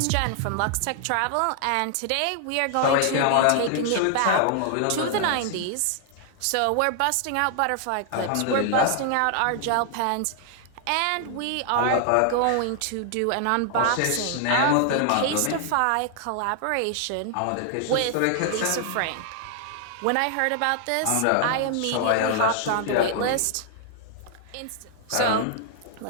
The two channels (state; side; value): different; both; correlation 0.00